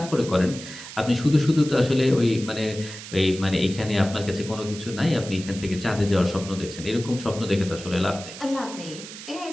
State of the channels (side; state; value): right; noise; hiss, 13 dB below the sound